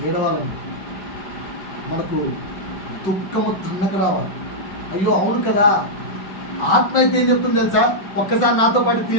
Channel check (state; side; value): late; right; 5.3 ms